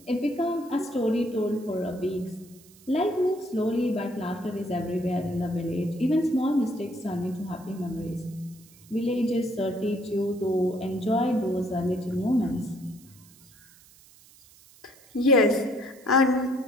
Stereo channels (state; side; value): noise; right; hiss, 25 dB below the sound